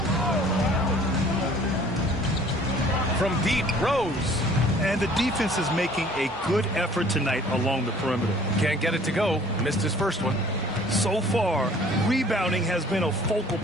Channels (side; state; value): both; normal; correlation 0.53